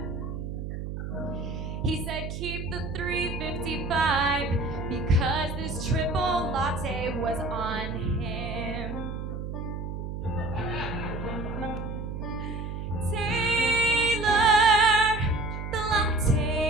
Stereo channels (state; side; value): noise; right; hum, 6 dB below the sound